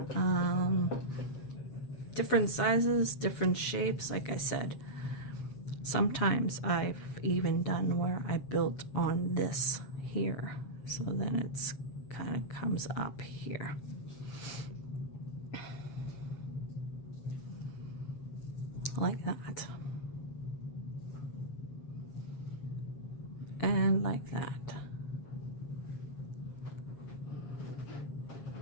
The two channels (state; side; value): late; right; 7.3 ms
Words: Different sizes, different shapes, like I said. Sometimes I've even done where I built on this here. So then it's kind of comes up here. Like that. And like that.